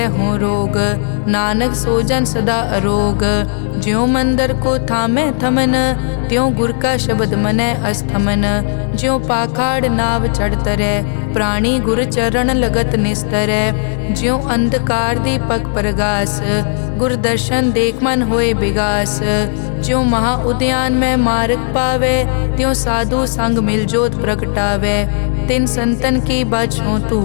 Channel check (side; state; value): right; silent; digital silence